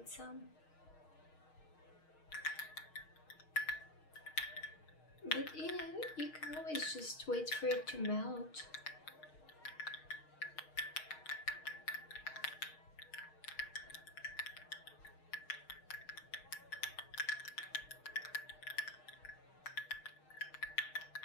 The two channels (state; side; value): late; right; 6.4 ms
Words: some. But you know, you can always just wait for it to melt.